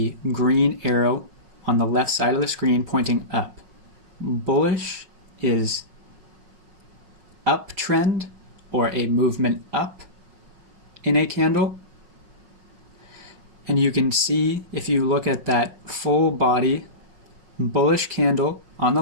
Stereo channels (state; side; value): late; left; 5.5 ms